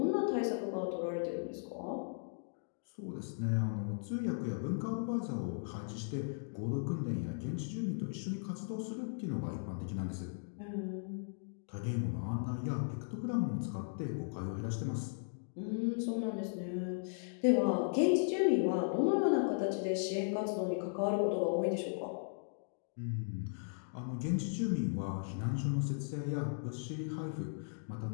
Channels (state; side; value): silent; right; digital silence